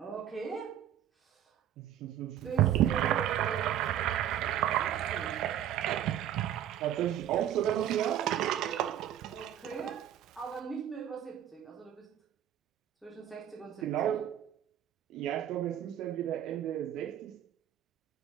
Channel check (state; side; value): quieter; left; 10.9 dB